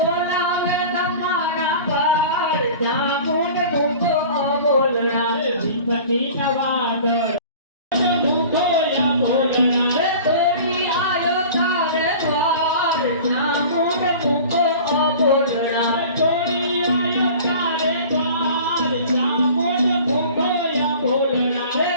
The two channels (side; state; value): both; inverted; correlation -0.41